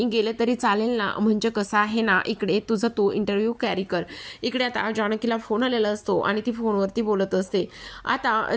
गेले तरी चालेल ना, म्हणजे कसं आहे ना, इकडे तुझं तू इंटरव्ह्यू कॅरी कर. इकडे आता जानकीला फोन आलेला असतो आणि ती फोनवरती बोलत असते. आता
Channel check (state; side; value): identical; both; correlation 1.00